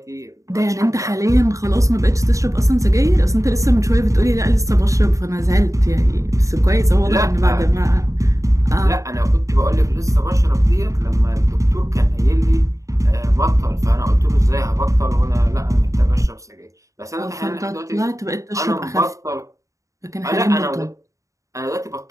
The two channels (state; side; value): late; left; 0.16 ms